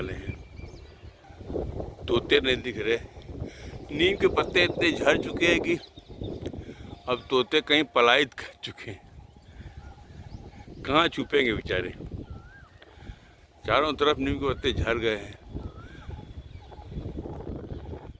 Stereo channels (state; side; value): identical; both; correlation 1.00